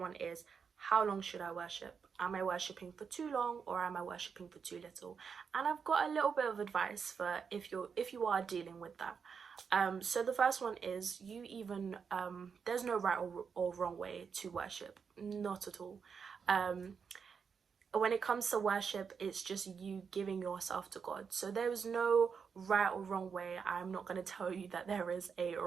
is, how long should I worship? Am I worshiping for too long, or am I worshiping for too little? And I've got a little bit of advice for if you are dealing with that. So the first one is, there's no right or wrong way to worship, not at all. When it comes to worship, it's just you giving yourself to God. So there is no right or wrong way. I'm not going to tell you that there is a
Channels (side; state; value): left; quieter; 6.2 dB